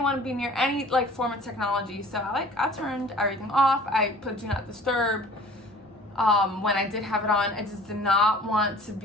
want to be near any like form of technology, so I turned everything off. I put do not disturb. When I did have it on, I just did not want to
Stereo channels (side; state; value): both; normal; correlation 0.48